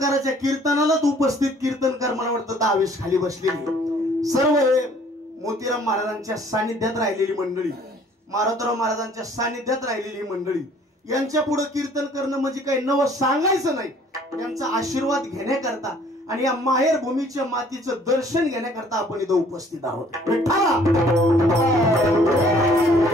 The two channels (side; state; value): both; normal; correlation 0.57